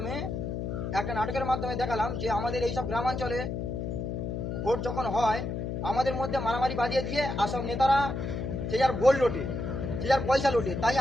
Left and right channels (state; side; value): noise; left; hum, 3 dB below the sound